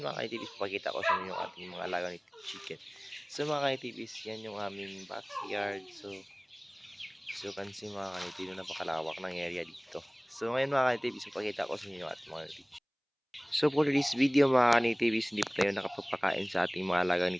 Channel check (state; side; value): identical; both; correlation 1.00